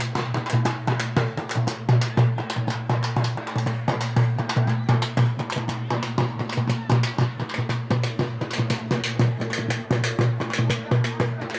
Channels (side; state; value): both; identical; correlation 1.00